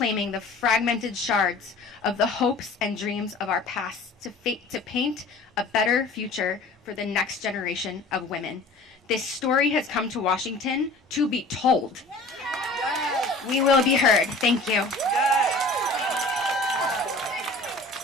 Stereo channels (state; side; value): quieter; right; 3.0 dB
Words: the fragmented shards of the hopes and dreams of our past to paint a better future for the next generation of women. This story has come to Washington to be told. We will be heard. Thank you.